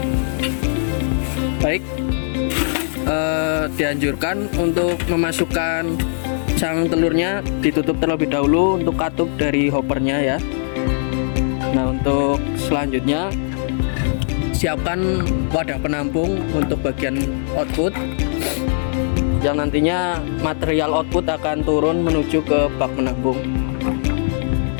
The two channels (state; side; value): silent; right; digital silence